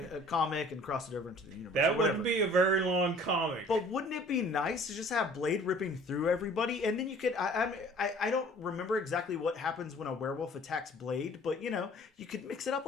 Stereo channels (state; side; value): normal; both; correlation 0.51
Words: comic and cross it over into the universe, that wouldn't be a very long comic. But wouldn't it be nice to just have Blade ripping through everybody, and then you could. I don't remember exactly what happens when a werewolf attacks Blade, but you could mix it up